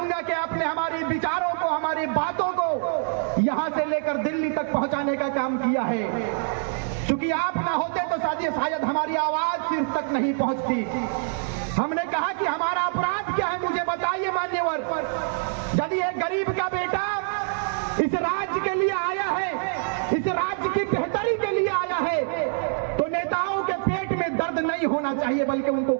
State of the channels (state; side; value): silent; left; 62 dB below the other